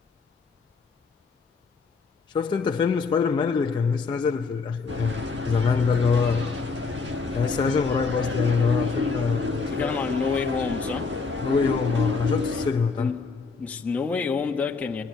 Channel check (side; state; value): right; quieter; 4.6 dB